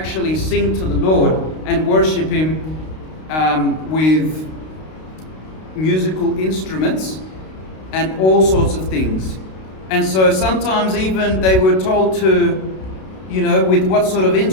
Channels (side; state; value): right; late; 32 ms